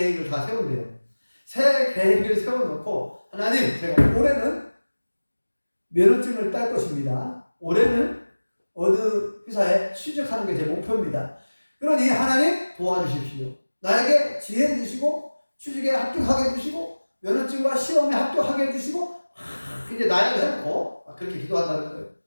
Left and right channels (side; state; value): both; inverted; correlation -1.00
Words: 다 세운대요. 새해 계획을 세워놓고 하나님, 제가 올해는 면허증을 딸 것입니다. 올해는 어느 회사에 취직하는 게 제 목표입니다. 그러니 하나님 도와주십시오. 나에게 지혜 주시고 취직에 합격하게 해주시고 면허증과 시험에 합격하게 해주시고 이제 나약을 해놓고 그렇게 기도한다는 거예요.